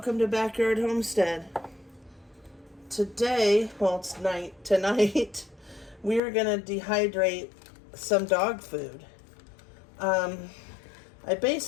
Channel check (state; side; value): drops out; right; at 6.2 s